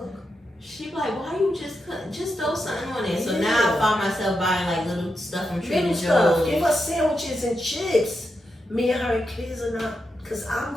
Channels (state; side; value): normal; both; correlation 0.86